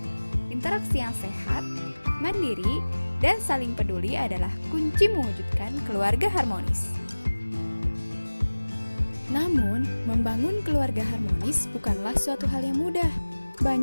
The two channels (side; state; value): both; inverted; correlation -1.00